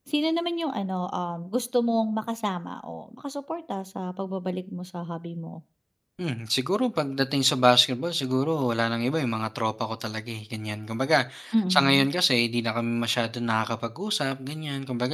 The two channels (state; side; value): identical; both; correlation 1.00